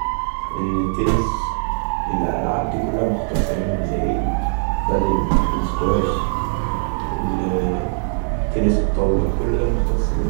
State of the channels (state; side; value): silent; left; digital silence